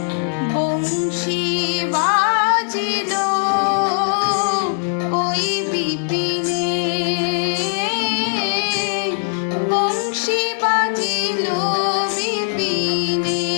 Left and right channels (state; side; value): silent; right; digital silence